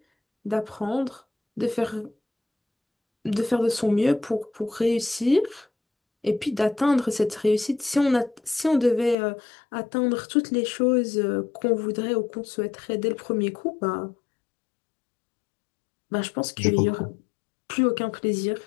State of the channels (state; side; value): drops out; right; at 9.2 s